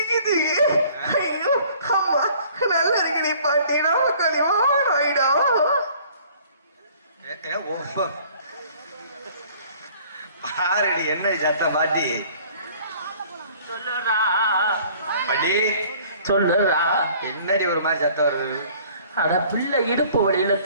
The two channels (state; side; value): inverted; both; correlation -0.53